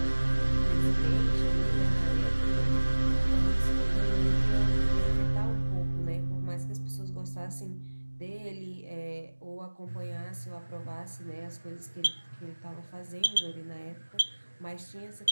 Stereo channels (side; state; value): both; inverted; correlation -1.00